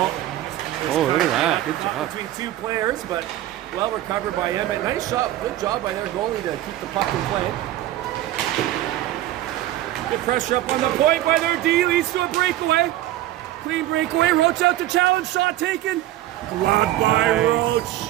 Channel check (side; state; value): left; quieter; 14.4 dB